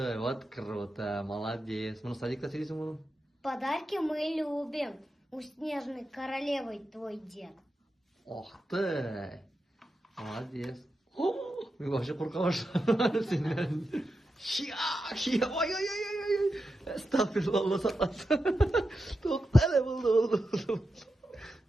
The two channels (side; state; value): both; normal; correlation 0.89